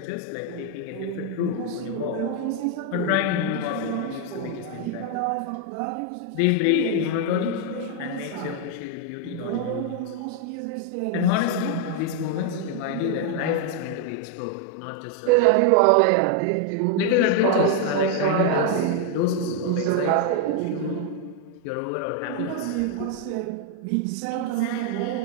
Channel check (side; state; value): both; different; correlation 0.00